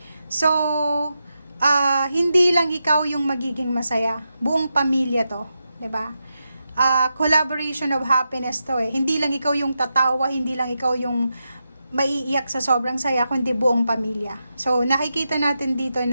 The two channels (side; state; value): both; inverted; correlation -0.88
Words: So, hindi lang ikaw yung magiging masaya. Buong pamilya to. 'Di ba? Collaboration of happiness to eh. Hindi lang ikaw yung tatawa, hindi lang ikaw yung maiiyak sa sobrang saya, kundi buong pamilya. So, nakikita natin dito